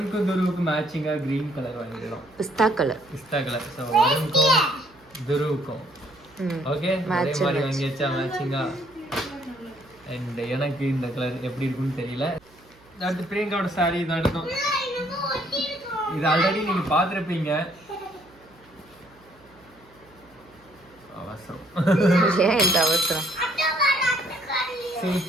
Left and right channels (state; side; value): noise; right; hum, 29 dB below the sound